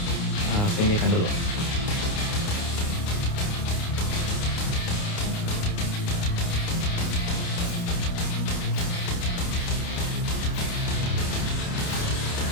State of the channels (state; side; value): late; right; 29 ms